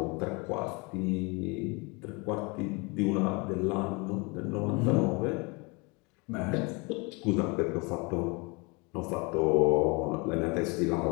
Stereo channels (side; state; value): right; quieter; 28.9 dB